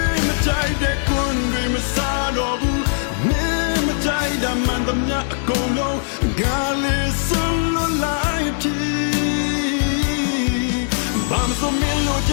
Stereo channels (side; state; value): right; silent; 62 dB below the other